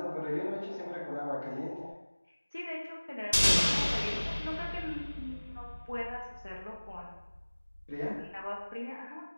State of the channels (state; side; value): inverted; both; correlation -1.00